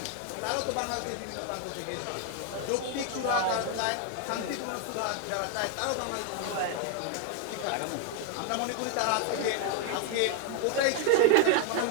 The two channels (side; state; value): both; different; correlation 0.00